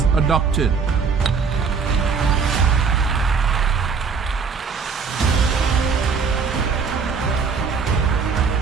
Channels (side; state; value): left; quieter; 5.5 dB